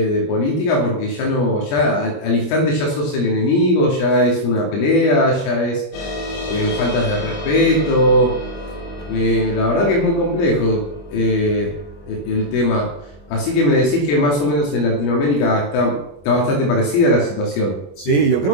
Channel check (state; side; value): late; right; 21 ms